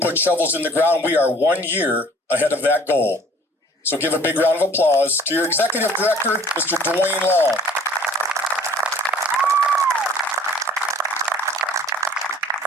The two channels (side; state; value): both; normal; correlation 0.52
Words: shovels in the ground, we are 1 year ahead of that goal. So give a big round of applause to your Executive Director, Mr. Dwayne Long.